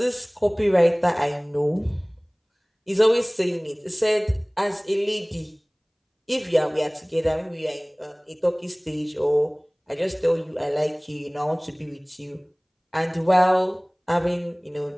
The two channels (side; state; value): both; identical; correlation 1.00